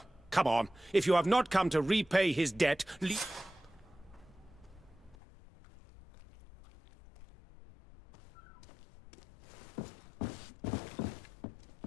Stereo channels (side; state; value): right; drops out; at 5.2 s